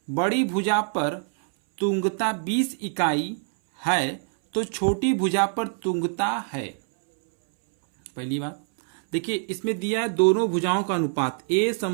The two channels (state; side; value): silent; left; 62 dB below the other